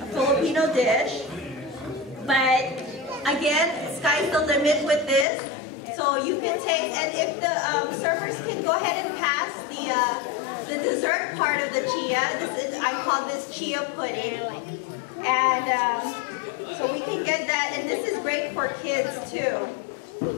a Filipino dish. But again, sky's the limit with this. So you can take, and if the servers can go ahead and pass the dessert part of the chia. I call this chia pudding, and so we can get that. And this is great for kids too.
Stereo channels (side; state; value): right; drops out; at 5.2 s